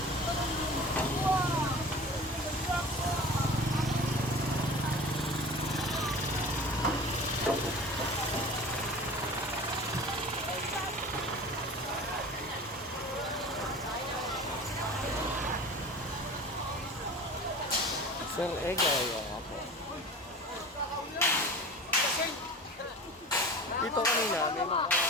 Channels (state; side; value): normal; both; correlation 0.38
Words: Sir Egay, nga po. Dito kanina, may mga